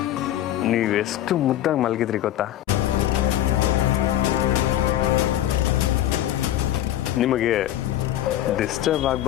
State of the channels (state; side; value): quieter; right; 12.9 dB